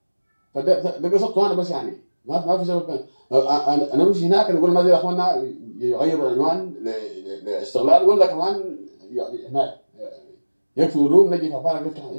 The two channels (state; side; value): inverted; both; correlation -1.00